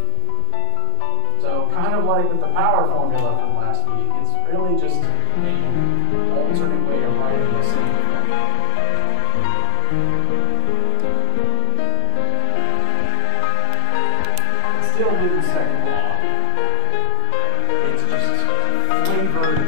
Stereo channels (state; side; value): different; both; correlation 0.00